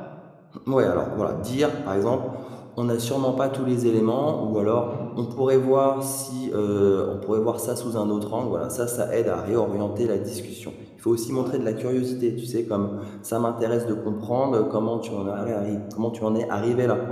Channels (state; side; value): identical; both; correlation 1.00